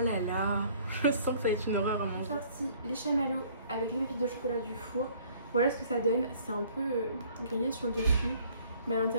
là, je sens que ça va être une horreur à manger. J'ai sorti les chamallows avec les pépites de chocolat du four. Voilà ce que ça donne. C'est un peu grillé sur le dessus, mais à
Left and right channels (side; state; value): both; inverted; correlation -0.57